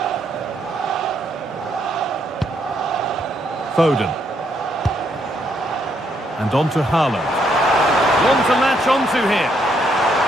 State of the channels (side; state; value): both; normal; correlation 0.74